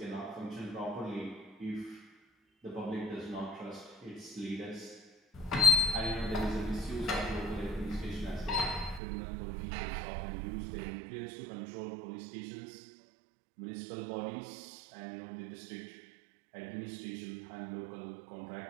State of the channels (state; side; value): drops out; left; at 9.0 s